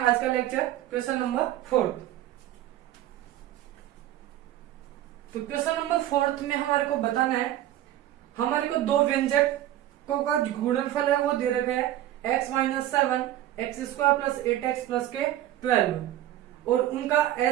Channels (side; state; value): left; quieter; 13.3 dB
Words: का लेक्चर, क्वेश्चन नंबर 4। तो क्वेश्चन नंबर 4 में हमारे को बताना है, हमारे को 2 व्यंजकों का गुणनफल है वो दे रखा है x-7 x² plus 8x plus के 12, और उनका